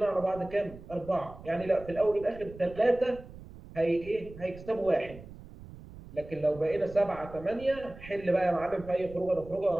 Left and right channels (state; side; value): noise; right; rumble, 17 dB below the sound